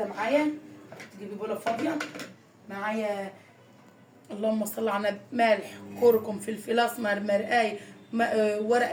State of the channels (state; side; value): identical; both; correlation 1.00